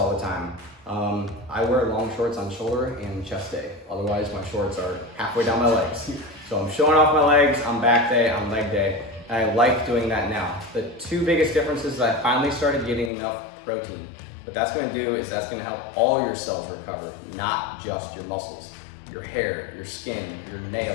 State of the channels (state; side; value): drops out; right; at 13.1 s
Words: the time. I wear long shorts on shoulder and chest day. Otherwise, my shorts are halfway down my legs. So I'm showing off my legs on back day, on leg day. And I like doing that now. The 2 biggest differences is I finally started getting enough protein. What that's gonna do is that's gonna help all your cells recover, not just your muscles. Your hair, your skin, your